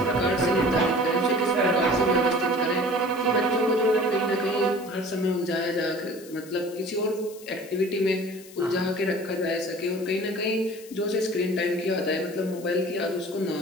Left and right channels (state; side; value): noise; left; hiss, 20 dB below the sound